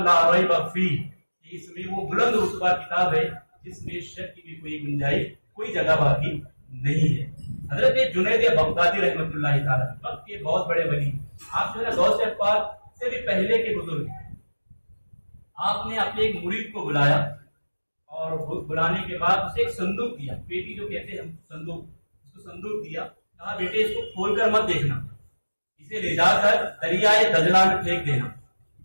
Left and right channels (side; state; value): both; inverted; correlation -1.00